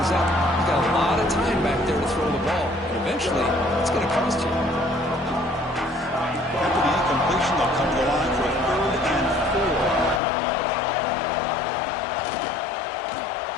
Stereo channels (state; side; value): drops out; right; at 10.2 s